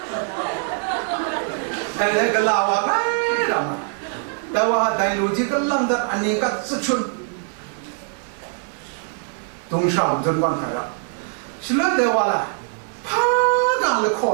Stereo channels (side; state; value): left; silent; 56 dB below the other